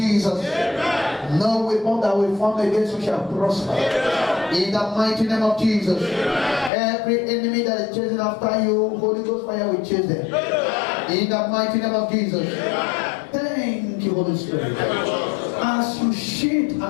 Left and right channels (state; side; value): drops out; right; at 6.7 s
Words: No weapon that will form against you shall prosper. In the mighty name of Jesus. Every enemy that is chasing after you, Holy Ghost fire will chase them. In the mighty name of Jesus. Thank you, Holy Spirit. As you shield